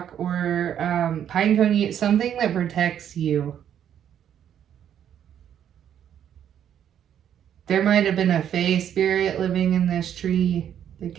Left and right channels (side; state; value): left; quieter; 9.6 dB